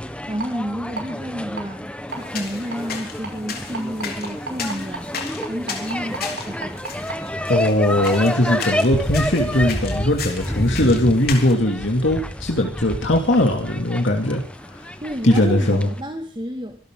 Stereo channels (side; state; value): both; normal; correlation 0.61